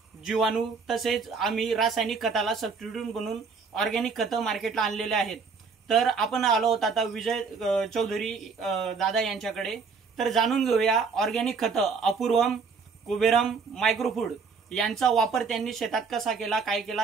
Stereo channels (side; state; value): left; quieter; 5.2 dB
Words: जीवाणू तसेच आम्ही रासायनिक खताला सबस्टिट्यूट बनवून ऑर्गॅनिक खतं मार्केटला आणलेले आहेत। तर आपण आलो आहोत आता विजय चौधरी दादा यांच्याकडे। तर जाणून घेऊया ऑर्गॅनिक खतं अपूर्वम, कुबेरम, मायक्रोफूड यांचा वापर त्यांनी शेतात कसा केला, काय